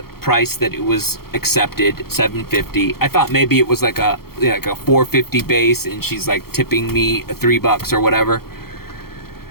price that it was accepted, $7.50. I thought maybe it was like a $4.50 base and she's like tipping me $3 or whatever.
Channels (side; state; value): right; late; 0.94 ms